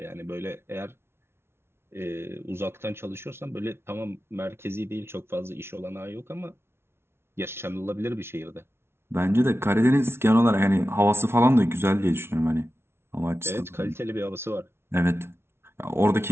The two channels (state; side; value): late; left; 0.12 ms